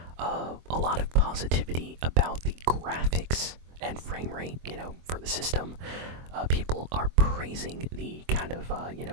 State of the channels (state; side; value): late; left; 24 ms